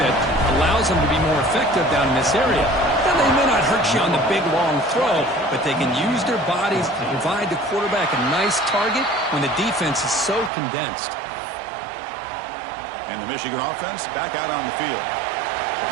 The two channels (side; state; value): left; drops out; at 10.5 s